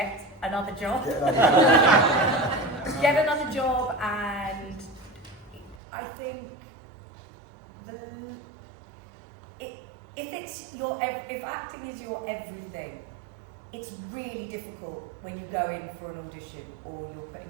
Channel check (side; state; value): left; drops out; at 5.8 s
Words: another job. Get another job, and I think if acting is your everything, it's really difficult when you go in for an audition or you're